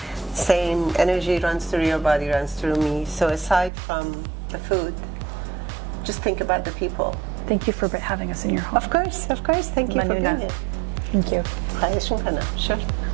Same energy runs through your body, runs through me. So aside from the food, just think about the people. Thank you for having us in your home. Of course. Thank you for being here. Thank you. خواهش میکنم. Sure.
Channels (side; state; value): left; drops out; at 3.7 s